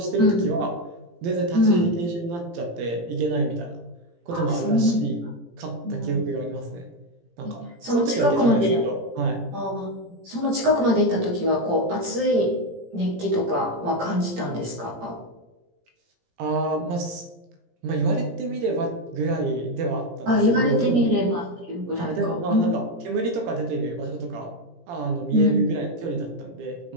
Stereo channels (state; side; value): late; left; 17 ms